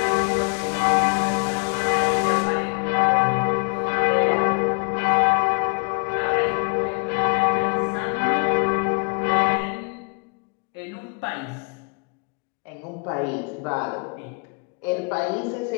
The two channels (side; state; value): right; quieter; 35.0 dB